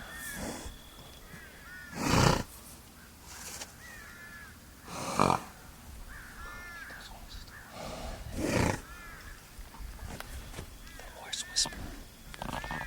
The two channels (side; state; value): both; identical; correlation 1.00